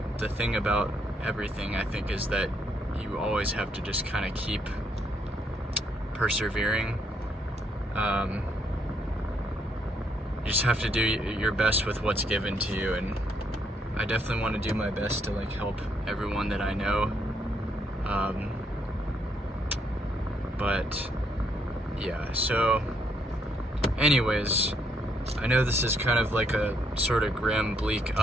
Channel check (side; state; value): both; normal; correlation 0.74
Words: the thing about everything, I think, is that you always have to just kind of keep persevering. You just have to do your best with what's given to you, and I definitely want to do my best to help everyone that I know. But yeah, so anyways, I know this is kind of like a sort of grim, bleak